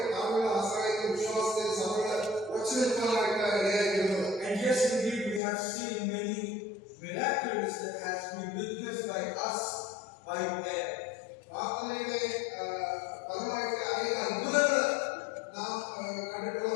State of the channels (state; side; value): drops out; right; at 5.4 s